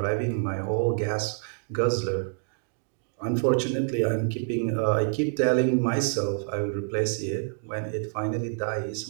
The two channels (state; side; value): silent; left; digital silence